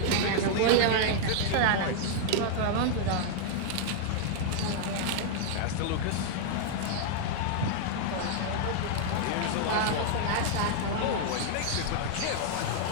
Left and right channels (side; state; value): both; different; correlation -0.01